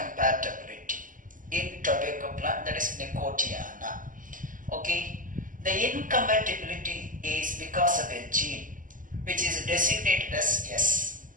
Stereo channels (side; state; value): left; late; 0.38 ms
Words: in tobacco plant, that is Nicotiana. Okay, the incompatibility is because of a gene which is designated as S.